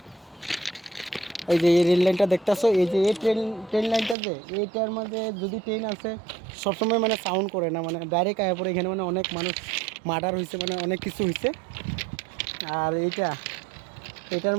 এই যে এই রেল লাইনটা দেখতেছো, এই যে এই ট্রেন লাইনটা, যে এইটার মধ্যে যদি ট্রেন আছে সবসময় মানে সাউন্ড করে না, মানে ডাইরেক্ট আয়া পরে এখানে মানে অনেক মানুষ মার্ডার হয়েছে, মানে অনেক কিছু হয়েছে। আর এটার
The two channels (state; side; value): drops out; left; at 4.2 s